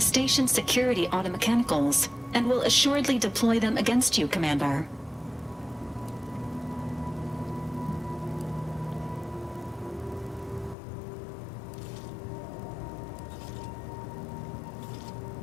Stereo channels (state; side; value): drops out; right; at 10.8 s